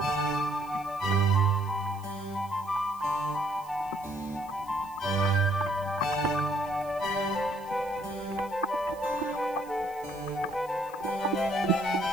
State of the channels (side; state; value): left; noise; hiss, 22 dB below the sound